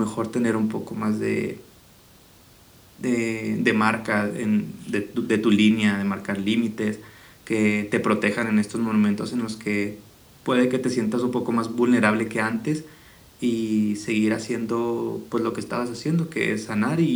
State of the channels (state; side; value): identical; both; correlation 1.00